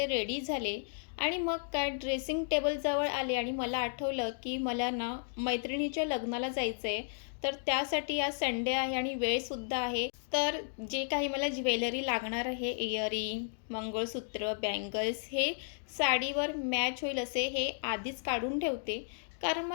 रेडी झाले आणि मग काय ड्रेसिंग टेबलजवळ आले आणि मला आठवलं की मला ना मैत्रिणीच्या लग्नाला जायचं आहे. तर त्यासाठी आज संडे आहे आणि वेळसुद्धा आहे. तर जे काही मला ज्वेलरी लागणार आहे, इयरिंग, मंगळसूत्र, बँगल्स, हे साडीवर मॅच होईल असे हे आधीच काढून ठेवते. कारण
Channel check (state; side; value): silent; right; digital silence